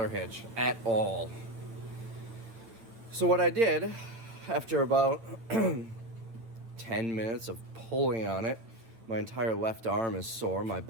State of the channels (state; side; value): late; left; 9.2 ms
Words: hitch at all. So what I did, after about 10 minutes of pulling on it, my entire left arm is sore, my